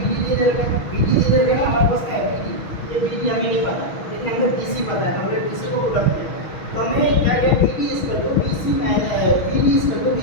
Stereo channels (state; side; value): late; right; 6.3 ms